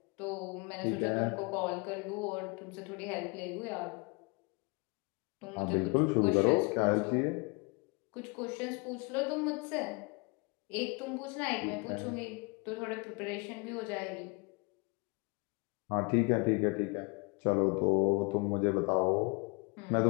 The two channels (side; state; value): right; quieter; 30.8 dB